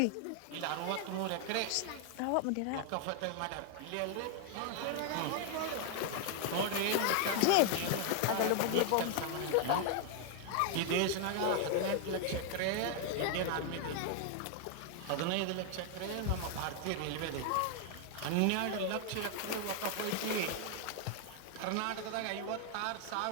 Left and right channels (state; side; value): different; both; correlation 0.00